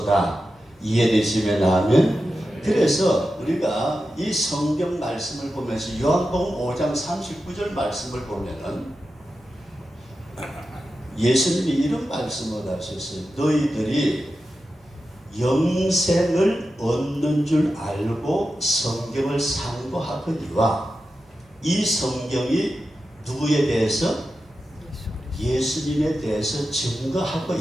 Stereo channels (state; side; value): normal; both; correlation 0.91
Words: 이해되시면 하면. 그래서 우리가 이 성경 말씀을 보면서 요한복음 5장 39절 말씀을 보면은 예수님이 이런 말씀을 하셨어요. 너희들이 영생을 얻는 줄 알고 성경을 상고하거니와 이 성경이 누구에 대해서? 예수님에 대해서 증거하고